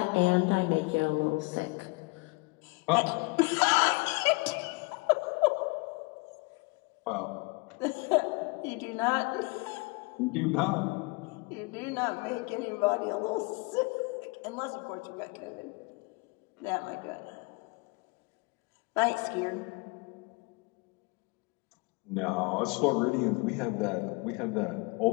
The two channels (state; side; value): quieter; right; 27.6 dB